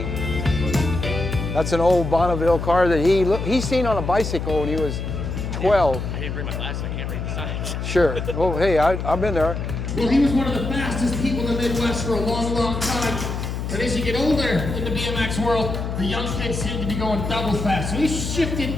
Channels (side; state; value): left; noise; hum, 4 dB below the sound